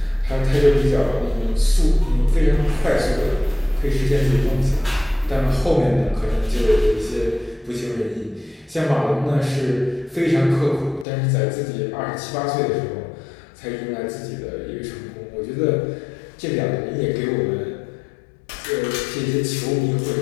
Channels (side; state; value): right; drops out; at 11.1 s